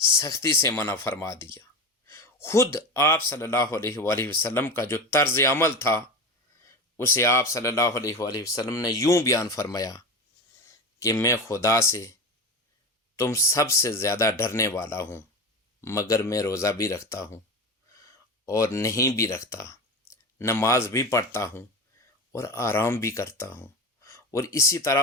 سے منع فرما دیا۔ خود آپ صلی اللہ علیہ وآلہ وسلم کا جو طرز عمل تھا اسے آپ صلی اللہ علیہ وآلہ وسلم نے یوں بیان فرمایا کہ میں خدا سے تم سب سے زیادہ ڈرنے والا ہوں، مگر میں روزہ بھی رکھتا ہوں اور نہیں بھی رکھتا، نماز بھی پڑھتا ہوں اور آرام بھی کرتا ہوں، اور اسی طرح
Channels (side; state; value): both; normal; correlation 0.25